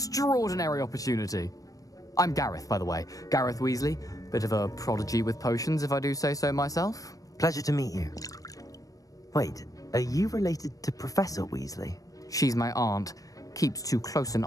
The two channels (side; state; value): right; late; 0.17 ms